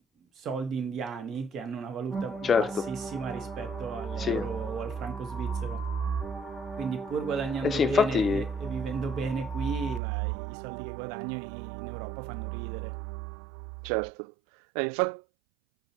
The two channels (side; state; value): left; drops out; at 10.0 s